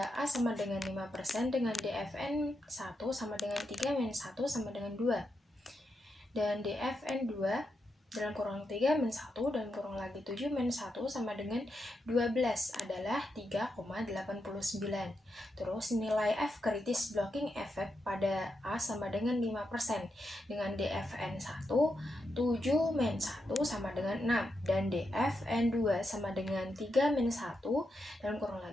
A sama dengan 5% dengan DFN 1 sama dengan 3-1 sama dengan 2 dan DFN 2 dalam kurang 3-1 dan kurang lagi 7-1 sama dengan 12 adalah 3,89. Terus nilai F kritis blocking effect pada A sama dengan 5% dengan DFN 1 7-1 sama dengan 6 dan DFN 2 sama dengan 3-1 dan kurang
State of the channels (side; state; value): both; normal; correlation 0.85